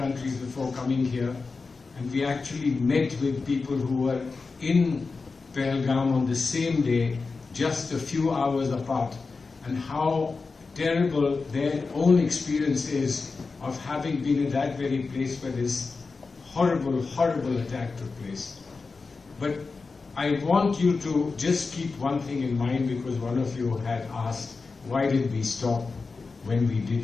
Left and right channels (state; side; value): quieter; right; 4.3 dB